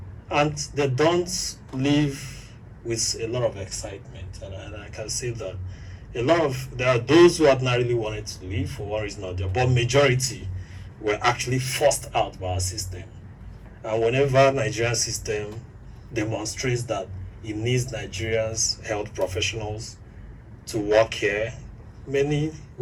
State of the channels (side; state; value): both; identical; correlation 1.00